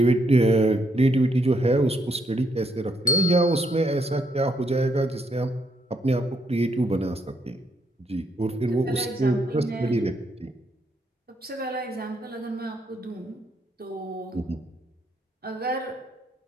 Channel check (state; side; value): normal; both; correlation 0.74